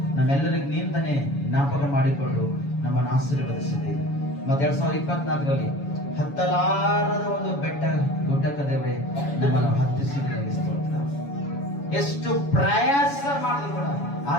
ನಮ್ಮೆಲ್ಲರಿಗೆ ನೀಂದನೆ ಜ್ಞಾಪಕ ಮಾಡಿಕೊಂಡು ನಮ್ಮನ್ನು ಆಶೀರ್ವದಿಸಿದಿ. ಮತ್ತು 2024 ಹತ್ತಲಾರದ ಒಂದು ಬೆಟ್ಟ ಗುಡ್ಡಕ್ಕ ದೇವರೇ ನಮ್ಮನ್ನು ಹತ್ತಿಸಿದ ಸ್ತೋತ್ರ. ಎಷ್ಟು ಪ್ರಯಾಸ ಮಾಡಿದ್ರು ಕೂಡ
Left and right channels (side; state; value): right; late; 7.1 ms